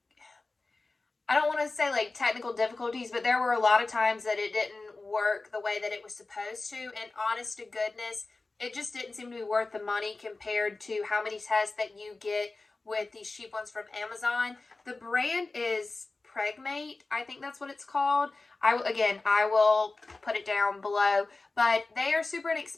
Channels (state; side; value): quieter; right; 3.5 dB